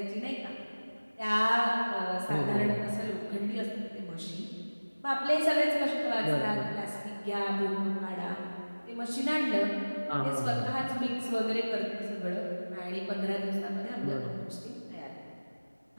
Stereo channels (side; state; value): both; inverted; correlation -1.00